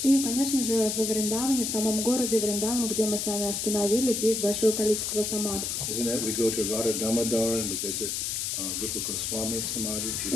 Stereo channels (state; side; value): noise; left; hiss, 1 dB below the sound